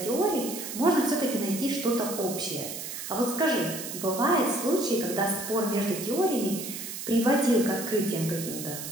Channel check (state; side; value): noise; right; hiss, 8 dB below the sound